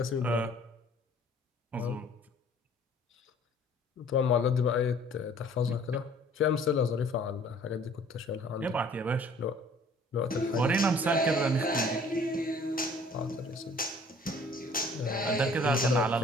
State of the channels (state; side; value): normal; both; correlation 0.54